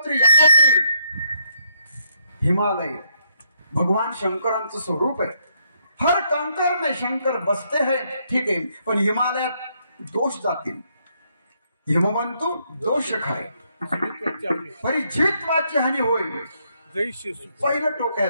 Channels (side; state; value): both; inverted; correlation -0.74